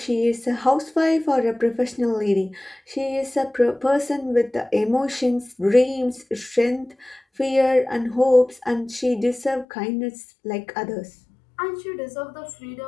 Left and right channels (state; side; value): drops out; right; at 9.7 s